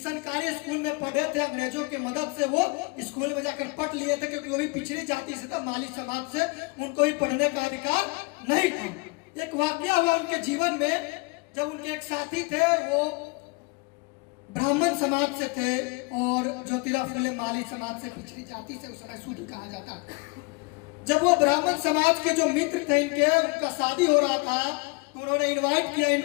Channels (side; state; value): right; quieter; 27.9 dB